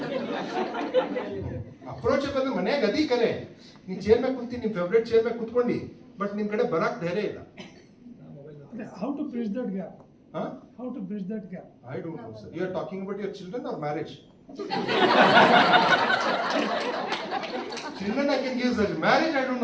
Approachable ಮನೆಯಾಗ ಅದಿ ಕರೆ. ನೀ ಚೇರ್ ಮೇಲೆ ಕುಂತಿ, ನಿಮ್ ಫೇವ್ರೇಟ್ ಚೇರ್ ಮೇಲೆ ಕುತ್ಕೊಂಡಿ, ಬಟ್ ನಿಮ್ ಕಡೆ ಬರಕ್ ಧೈರ್ಯ ಇಲ್ಲ. How to bridge that gap? Huh? How to bridge that gap? I don't know, sir. You are talking about your children or marriage? Children I can give, sir. Marriage I don't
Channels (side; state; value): both; identical; correlation 1.00